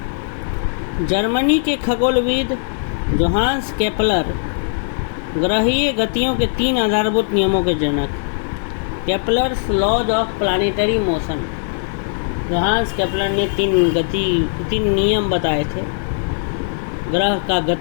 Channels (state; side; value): silent; right; 56 dB below the other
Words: जर्मनी के खगोलविद जोहान्स केपलर ग्रहीय गतियों के 3 आधारभूत नियमों के जनक, Kepler's laws of planetary motion. Johannes Kepler ने 3 नियम बताए थे ग्रह का